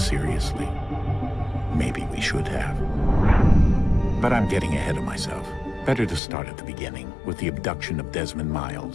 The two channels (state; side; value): drops out; right; at 6.2 s